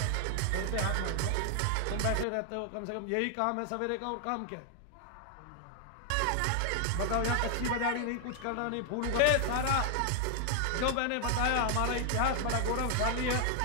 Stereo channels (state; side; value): different; both; correlation 0.00